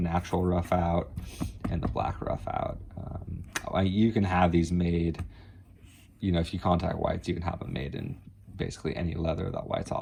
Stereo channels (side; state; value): both; identical; correlation 1.00